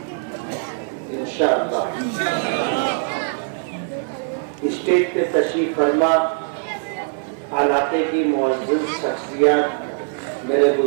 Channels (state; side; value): silent; left; 65 dB below the other